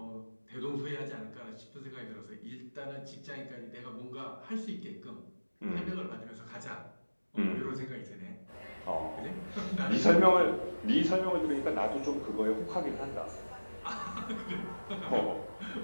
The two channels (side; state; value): both; inverted; correlation -1.00